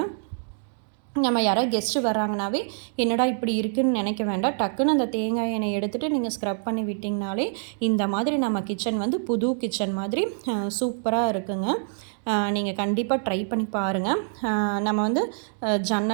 நம்ம யாராவது கெஸ்ட்டு வராங்கனாவே என்னடா இப்படி இருக்குதுன்னு நினைக்க வேண்டாம். டக்குன்னு அந்த தேங்காய் எண்ணெய் எடுத்துகிட்டு நீங்கள் ஸ்க்ரப் பண்ணி விட்டிங்கனாலே இந்த மாதிரி நம்ம கிச்சன் வந்து புது கிச்சன் மாதிரி சூப்பராக இருக்குங்க. நீங்கள் கண்டிப்பாக ட்ரை பண்ணி பாருங்கள். நம்ம வந்து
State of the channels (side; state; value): left; silent; digital silence